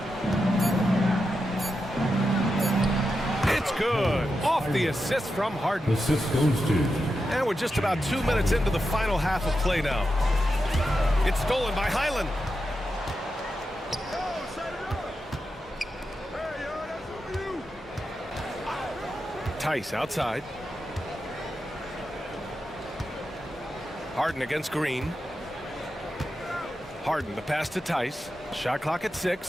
It's good. Off the assist from Harden. Assist goes to. And we're just about 2 minutes into the final half of play now. It's stolen by Highland. Tice outside. Harden against Green. Harden, the pass to Tice. Shot clock at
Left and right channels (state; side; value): normal; both; correlation 0.88